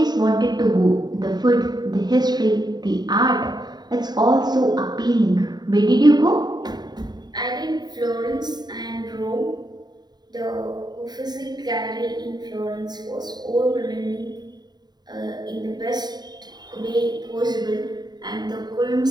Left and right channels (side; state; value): left; late; 0.20 ms